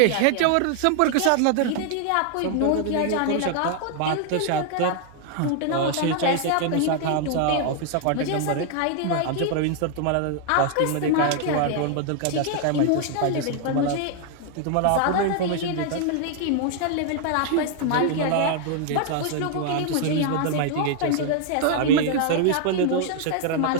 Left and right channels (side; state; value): both; different; correlation 0.00